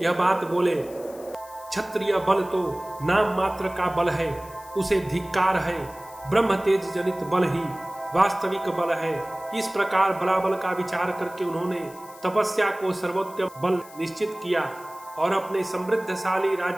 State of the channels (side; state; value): left; noise; hiss, 21 dB below the sound